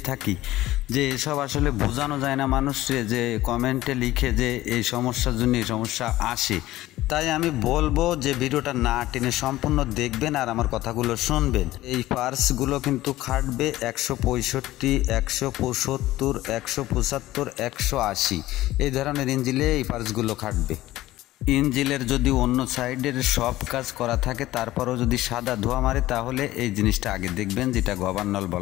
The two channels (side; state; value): right; quieter; 16.1 dB